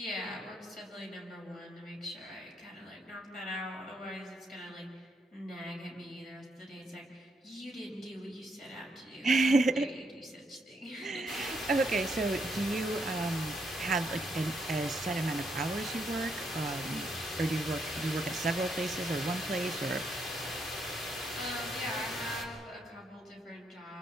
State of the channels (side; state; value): both; normal; correlation 0.76